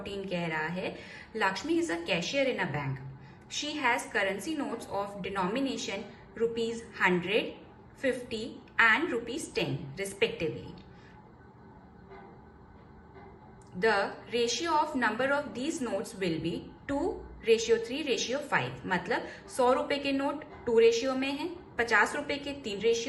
कह रहा है Lakshmi is a cashier in a bank, she has currency notes of denomination ₹100, ₹50 and ₹10 respectively. The ratio of number of these notes will be 2:3:5। मतलब 100 रुपए के नोट 2 रेशियो में है, 50 रुपए के 3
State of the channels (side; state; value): both; identical; correlation 1.00